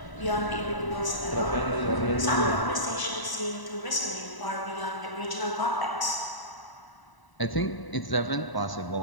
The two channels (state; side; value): late; right; 1.0 ms